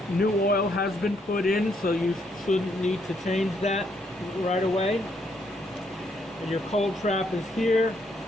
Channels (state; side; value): normal; both; correlation 0.73